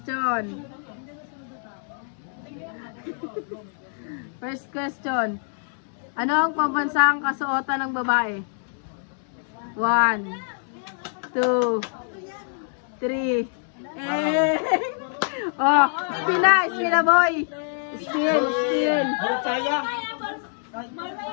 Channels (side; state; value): right; silent; 62 dB below the other